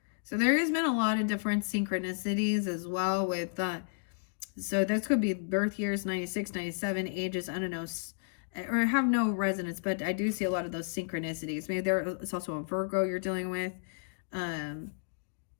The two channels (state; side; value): silent; right; digital silence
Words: So there has been a lot of different synchronicities as well with so this could be birth years 96, 97, ages, I don't know, or have no resonance, but I do see a lot of those synchronicities. Maybe it's also a Virgo you're dealing with,